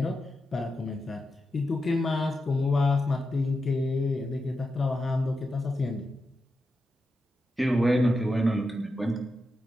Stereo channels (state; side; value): normal; both; correlation 0.88